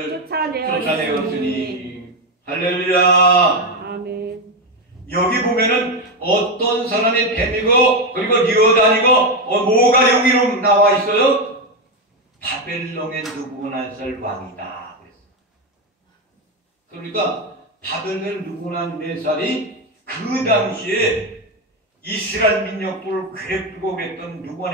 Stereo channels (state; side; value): normal; both; correlation 0.10